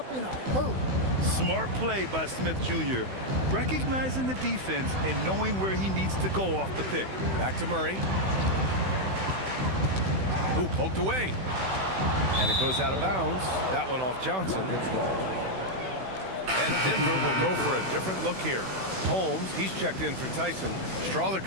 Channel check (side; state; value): left; late; 16 ms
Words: in a hurry. Smart play by Smith Jr., recognizing the defense and knowing where he needs to go off the pick. Back to Murray. Who poked away. And it goes out of bounds. That one off Johnson. And Denver will go for a different look here. Holmes, he's checked in for Tyson. Strawler